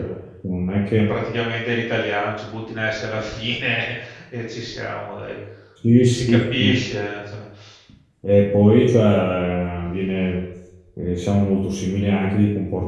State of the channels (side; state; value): both; identical; correlation 1.00